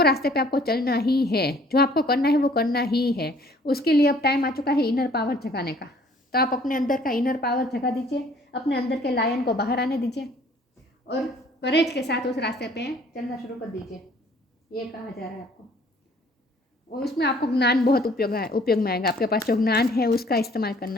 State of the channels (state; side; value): normal; both; correlation 0.57